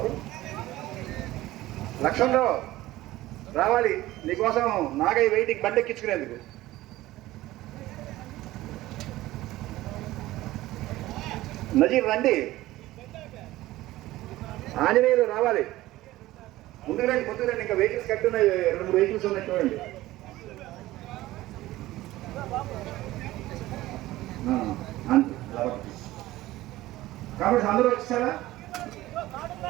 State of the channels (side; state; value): left; quieter; 16.8 dB